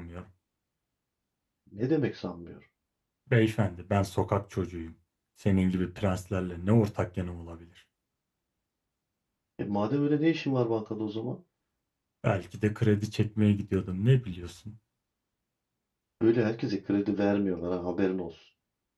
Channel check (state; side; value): identical; both; correlation 1.00